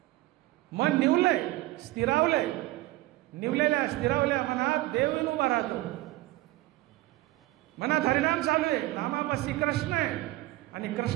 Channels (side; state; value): left; quieter; 18.4 dB